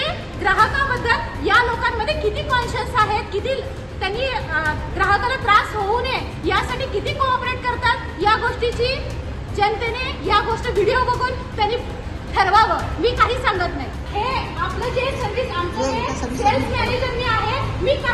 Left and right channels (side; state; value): both; identical; correlation 1.00